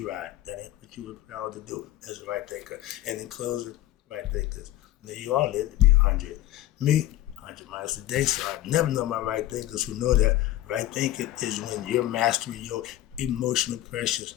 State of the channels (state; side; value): quieter; right; 14.6 dB